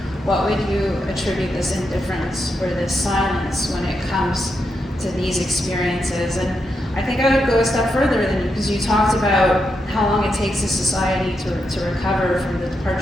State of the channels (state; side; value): normal; both; correlation 0.84